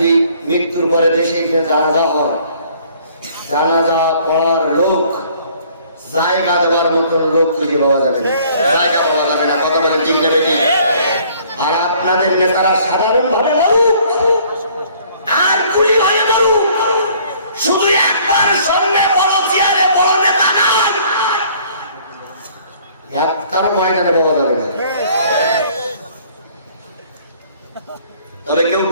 মৃত্যুর পরে দেশে গিয়ে জানাজা হয়, জানাজা পড়ার লোক, জায়গা দেওয়ার মতন লোক খুঁজে পাওয়া যাবে না, জায়গা পাওয়া যাবে না। কথা বলেন ঠিক নেবে ঠিক? আর আপনাদের নেতারা সাধারণ ভাবে বলুক আর গুলি হয়ে বলুক, শুধু একবার সামনে বড় চেয়ারে বড় নেতা নাম একটার ময়দানে পাওয়া যাবে না। তবে কেউ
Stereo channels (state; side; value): inverted; both; correlation -0.58